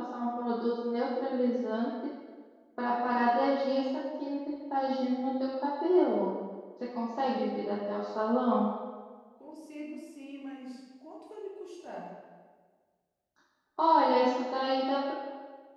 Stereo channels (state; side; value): identical; both; correlation 1.00